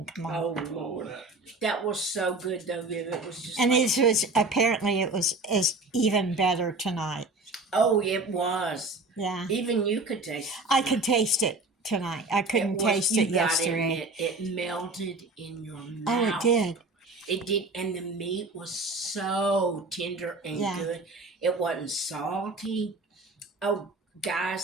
Come on. Oh Lord, that was so good though, Viv. It was just. And like, it was apparently it was even better tonight. Oh, it was. Yeah. Even you could taste it. I could taste it tonight. I couldn't taste it yesterday. It melted in your mouth. Oh, it did. It did, and the meat was so tender and good. It wasn't salty. Oh,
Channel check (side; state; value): left; quieter; 3.2 dB